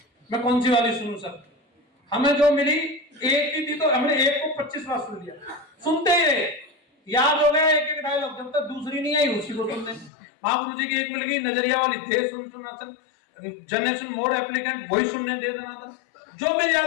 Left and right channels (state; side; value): drops out; right; at 10.1 s